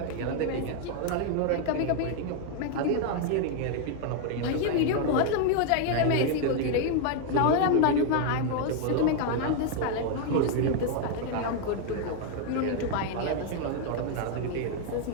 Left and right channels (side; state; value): both; different; correlation 0.00